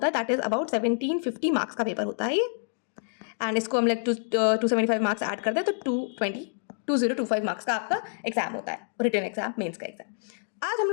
है दैट इज अबाउट 1750 मार्क्स का पेपर होता है ये। एंड इसको हम लाइक 275 मार्क्स ऐड कर दें तो 2025 मार्क्स का आपका एग्जाम होता है, रिटन एग्जाम, मेंस का एग्जाम। आज हम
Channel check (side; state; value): right; silent; digital silence